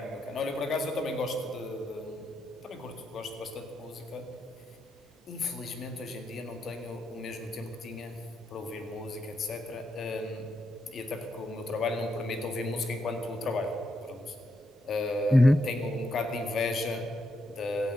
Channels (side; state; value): both; normal; correlation 0.81